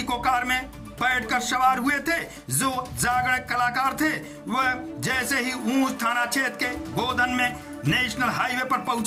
कार में बैठकर सवार हुए थे जो जागरण कलाकार थे। वह जैसे ही ऊंच थाना क्षेत्र के गोदन में नेशनल हाईवे पर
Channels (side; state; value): both; identical; correlation 1.00